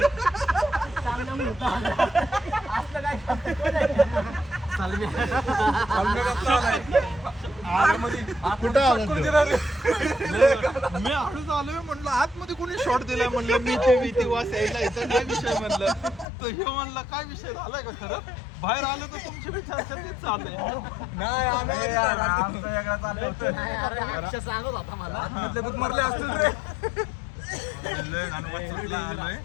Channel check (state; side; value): drops out; right; at 16.2 s